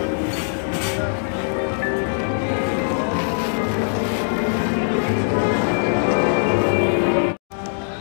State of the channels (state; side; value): silent; right; 65 dB below the other